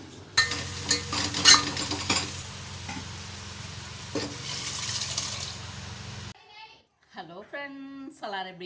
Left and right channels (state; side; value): identical; both; correlation 1.00